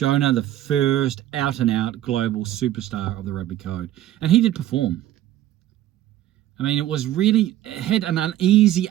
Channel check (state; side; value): quieter; left; 13.2 dB